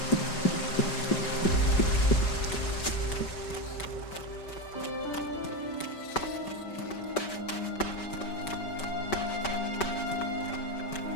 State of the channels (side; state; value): right; late; 5.2 ms